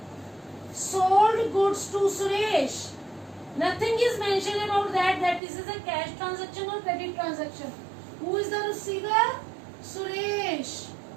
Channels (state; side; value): drops out; left; at 5.4 s